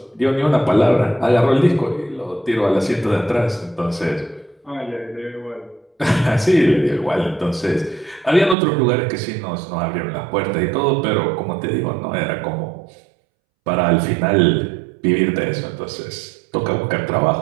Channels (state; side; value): drops out; left; at 8.6 s